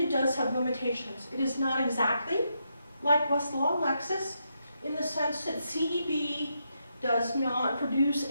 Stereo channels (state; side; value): inverted; both; correlation -0.81